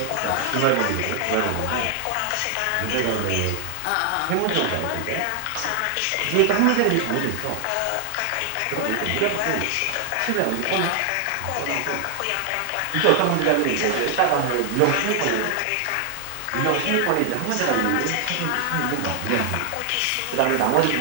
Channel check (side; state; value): both; different; correlation 0.00